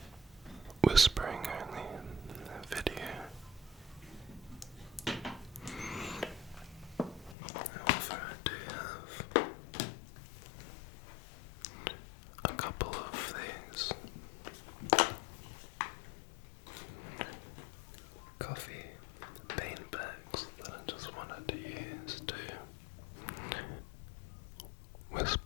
whispering only video. However, I do have a couple of these coffee bean bags that I just wanted to use to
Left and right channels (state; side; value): drops out; right; at 7.4 s